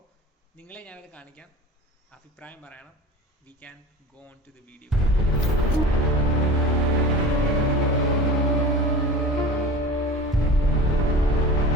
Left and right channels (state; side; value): normal; both; correlation 0.36